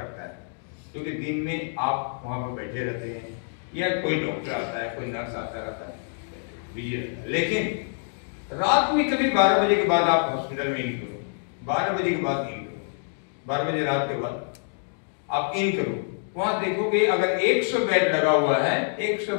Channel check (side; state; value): right; silent; digital silence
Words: है, क्योंकि दिन में आप वहां पर बैठे रहते हैं या कोई डॉक्टर आता है, कोई नर्स आता रहता है, बिजी रहता है। लेकिन रात में कभी 12 बजे के बाद आप हॉस्पिटल में इन करो, 12 बजे के बाद इन करो, 12 बजे रात के बाद आप इन करो, वहां देखोगे अगर 100 बेड लगा हुआ है, 100